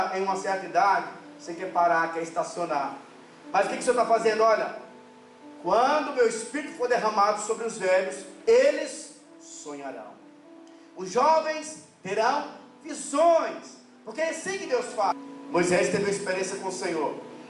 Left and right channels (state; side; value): identical; both; correlation 1.00